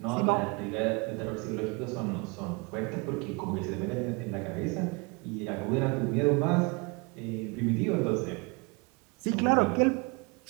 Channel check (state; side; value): quieter; left; 29.5 dB